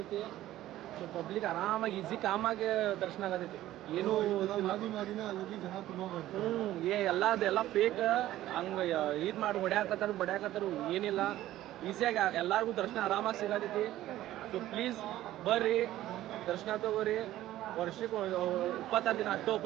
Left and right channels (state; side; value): quieter; left; 14.4 dB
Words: ಸೊ ಪಬ್ಲಿಕ್ ಆರಾಮಾಗಿ ಈಸಿ ಕಾಮಾಗಿ ದರ್ಶನ ಆಗತೈತಿ. ಏನು ಎಲ್ಲ ಫೇಕ್ ಹಂಗೆ ಇದು ಮಾಡಿ ಬಡ್ಯಾಕತ್ತಾರು ಏನಿಲ್ಲ. ಈಸಿಯಾಗಿ ಎಲ್ಲರಿಗೂ ದರ್ಶನ ಆರಾಮಾಗಿ ಸಿಗತೈತಿ. ಸೊ ಪ್ಲೀಸ್ ಬರ್ರಿ, ದರ್ಶನ ತಗೋರಿ. ವರ್ಷಕ್ಕೆ 26 ದಿನ ಅಷ್ಟು